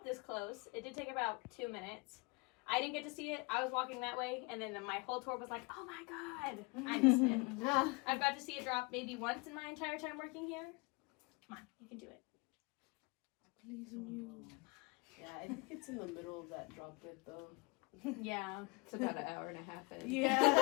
this close. It did take about 2 minutes. I didn't get to see it. I was walking that way, and then my whole tour was like, oh my god, I missed it. I've got to see it drop maybe once in my entire time working here. Come on, you can do it. Please you. Yeah, I think it's in the middle of that drop bit though. Yeah. It's about an hour and a half in. Yeah.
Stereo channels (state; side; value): quieter; right; 28.3 dB